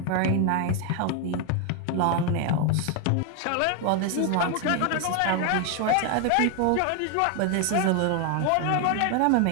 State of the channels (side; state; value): both; different; correlation 0.01